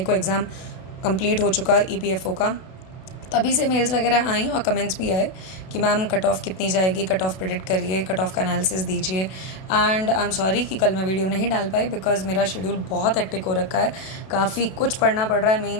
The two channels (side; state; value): right; late; 32 ms